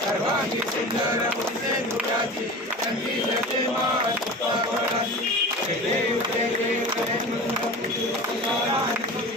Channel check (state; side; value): normal; both; correlation 0.34